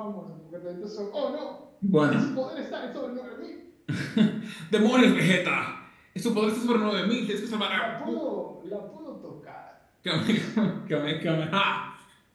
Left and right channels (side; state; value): both; identical; correlation 1.00